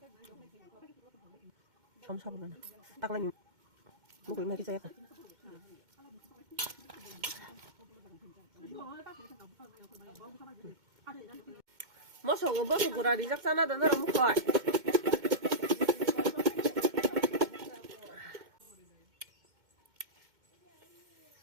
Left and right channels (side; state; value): left; late; 2.1 ms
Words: 처음 사보면 딱라니 먹을 맛이 있어야 돼. Masa nga ba sigurado sak sana dan ra mo ko.